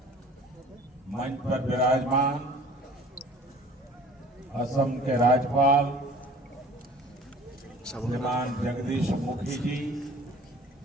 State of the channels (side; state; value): both; normal; correlation 0.47